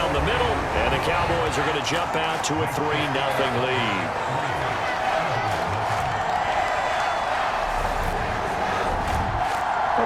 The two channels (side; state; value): both; identical; correlation 1.00